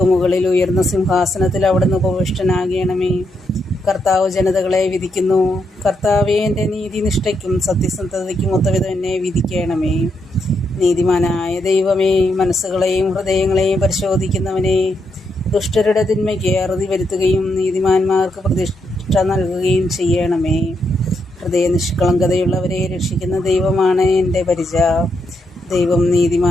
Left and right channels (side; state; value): both; normal; correlation 0.80